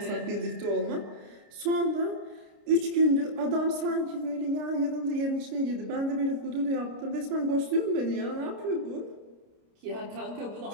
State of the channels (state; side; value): late; left; 29 ms